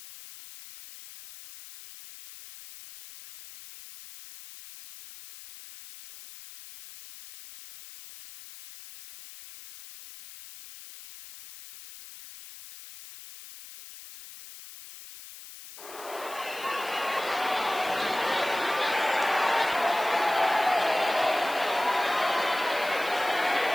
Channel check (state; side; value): noise; left; hiss, 16 dB below the sound